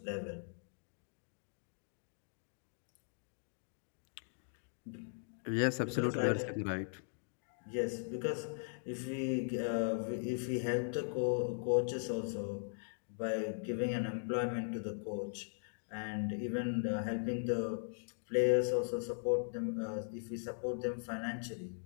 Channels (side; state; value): right; silent; digital silence